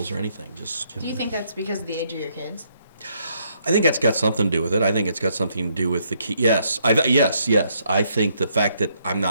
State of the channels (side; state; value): both; inverted; correlation -0.72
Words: or anything. Just, Do you think that's because of the age of your kids? I think that's got something to do with it. I think it's got something to do with the key. Yes. Yes. I think the fact that I'm